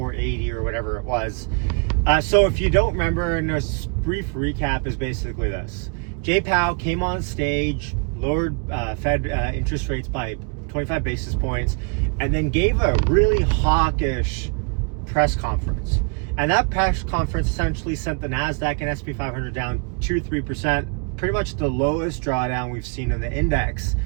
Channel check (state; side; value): quieter; left; 34.9 dB